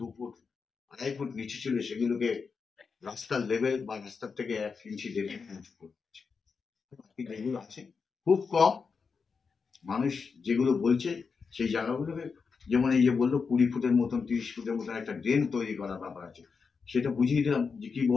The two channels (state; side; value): quieter; right; 5.3 dB